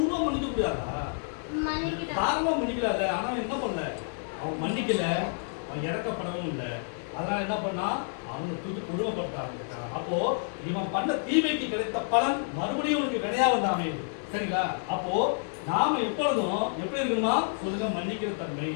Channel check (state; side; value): silent; right; 58 dB below the other